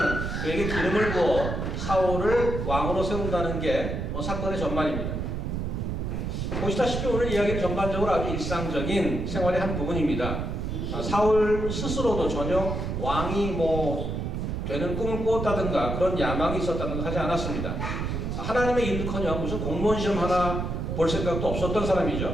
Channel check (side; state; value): right; noise; rumble, 3 dB below the sound